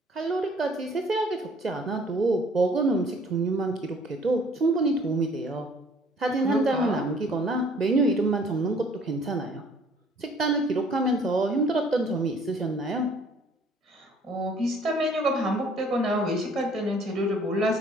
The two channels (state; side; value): normal; both; correlation 0.57